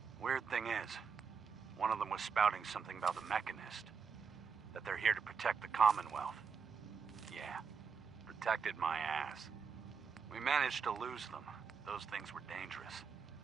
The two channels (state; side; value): quieter; left; 6.0 dB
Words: Weird thing is, one of them was spouting something about the Mechanist. That they're here to protect the Commonwealth. Yeah, protected my ass. We managed to lose them. Those things were dangerous.